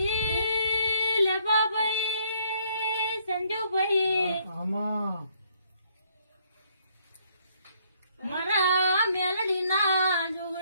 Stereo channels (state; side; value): inverted; both; correlation -0.66